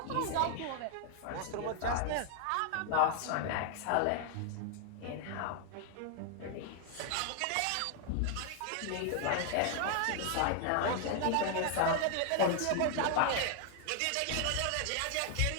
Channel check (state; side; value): different; both; correlation 0.00